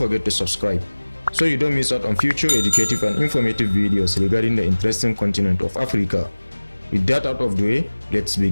to subscribe so you don't miss out on future educative and informative videos regarding the interesting continent of Africa. With that out of the way, let's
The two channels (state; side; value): inverted; both; correlation -1.00